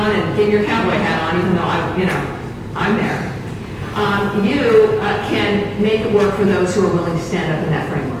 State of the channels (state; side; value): identical; both; correlation 1.00